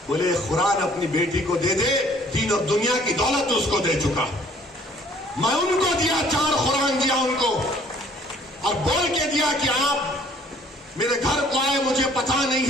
بولے قرآن اپنی بیٹی کو دے دے, دین اور دنیا کی دولت اس کو دے چکا. میں ان کو دیا, 4 قرآن دیا ان کو, اور بول کے دیا کہ آپ میرے گھر کو آئے, مجھے پتا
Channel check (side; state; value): both; normal; correlation 0.58